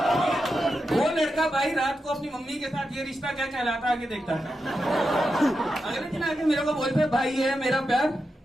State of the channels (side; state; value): both; normal; correlation 0.88